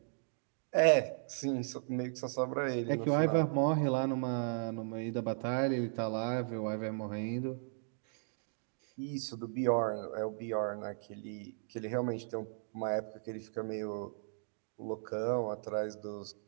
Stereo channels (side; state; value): left; silent; digital silence